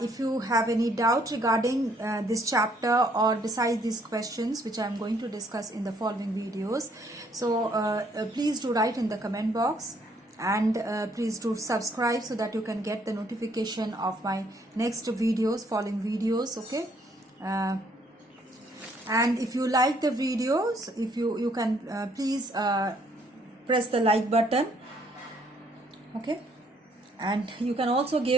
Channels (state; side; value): normal; both; correlation 0.66